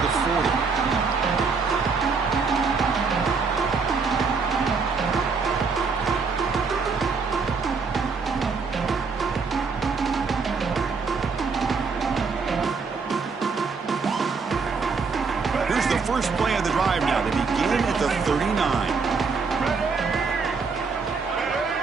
the 40. Here's the first play of the drive now. They begin at the 39.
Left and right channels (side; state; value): left; quieter; 4.9 dB